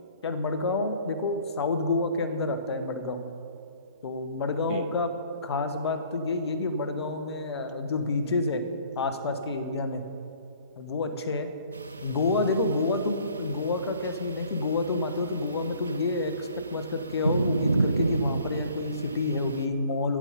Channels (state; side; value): inverted; both; correlation -0.56